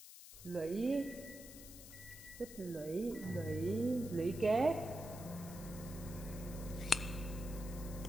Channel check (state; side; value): noise; left; hiss, 14 dB below the sound